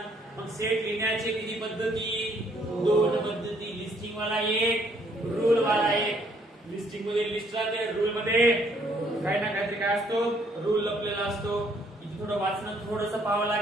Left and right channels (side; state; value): both; normal; correlation 0.66